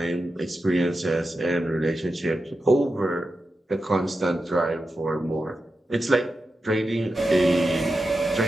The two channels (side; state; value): both; normal; correlation 0.90